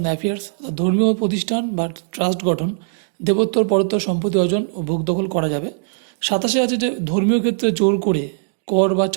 affairs, ধর্মীয় প্রতিষ্ঠান বা ট্রাস্ট গঠন, দেবোত্তর পরোত্তর সম্পত্তি অর্জন ও ভোগ দখল করা যাবে। 27 আছে যে ধর্মীয় ক্ষেত্রে জোর করে কর বা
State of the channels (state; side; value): silent; left; digital silence